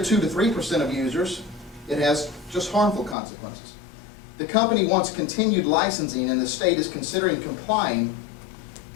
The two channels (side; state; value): right; drops out; at 3.2 s